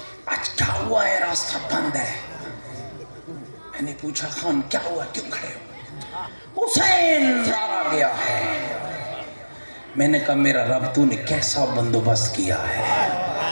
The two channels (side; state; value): both; inverted; correlation -1.00